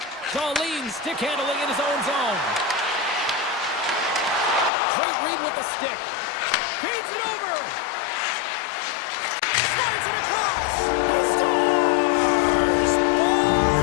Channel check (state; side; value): drops out; right; at 4.7 s